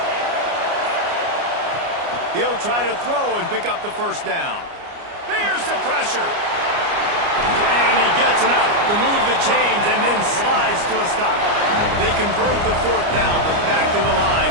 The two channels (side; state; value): left; late; 29 ms